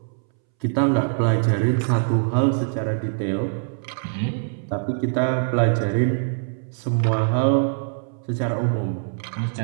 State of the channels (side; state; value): left; silent; 63 dB below the other